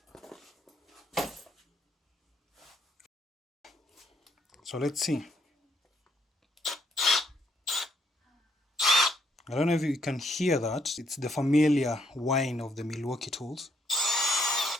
So let's see. I don't know if you can hear that. It's the familiar whine of the Milwaukee tools.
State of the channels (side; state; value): both; normal; correlation 0.71